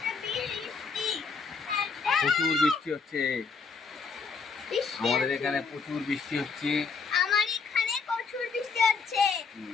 প্রচুর বৃষ্টি হচ্ছে, আমাদের এখানে প্রচুর বৃষ্টি হচ্ছে। আমার এখানে প্রচুর বৃষ্টি হচ্ছে।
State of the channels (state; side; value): quieter; right; 5.1 dB